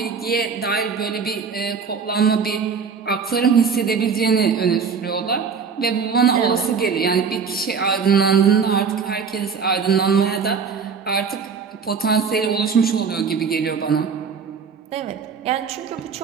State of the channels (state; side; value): quieter; left; 5.9 dB